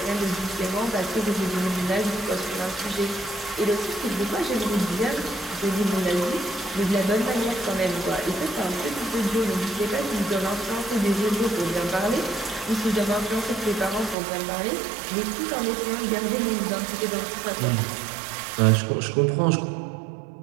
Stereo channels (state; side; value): drops out; left; at 14.2 s